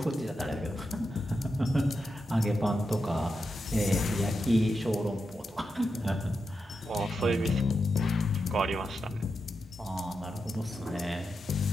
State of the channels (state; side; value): normal; both; correlation 0.87